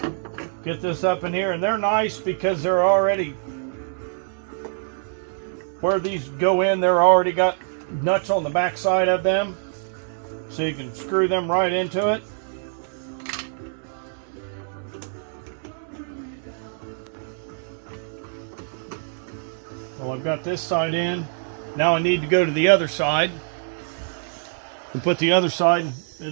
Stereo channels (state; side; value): silent; left; digital silence